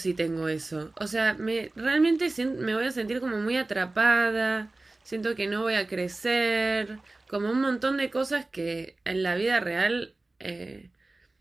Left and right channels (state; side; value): quieter; left; 3.0 dB